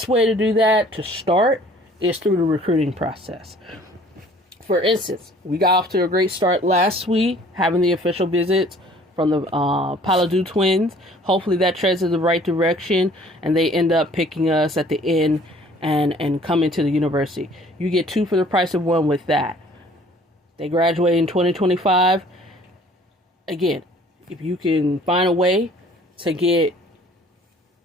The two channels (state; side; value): normal; both; correlation 0.54